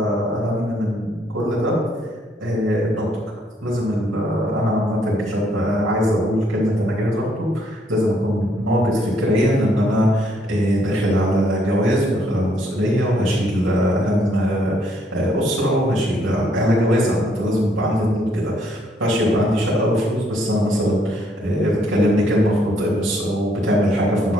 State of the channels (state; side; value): normal; both; correlation 0.69